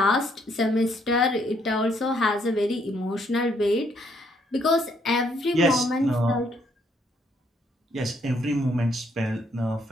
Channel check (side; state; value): both; normal; correlation 0.70